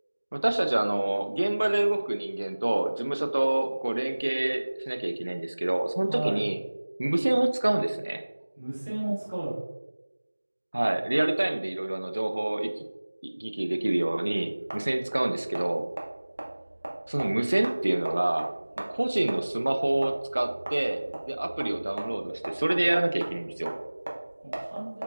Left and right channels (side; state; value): both; inverted; correlation -1.00